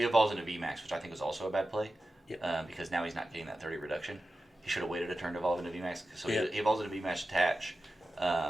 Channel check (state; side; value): normal; both; correlation 0.93